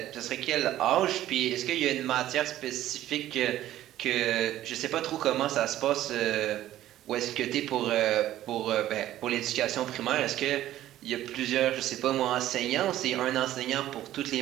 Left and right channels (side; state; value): left; quieter; 13.5 dB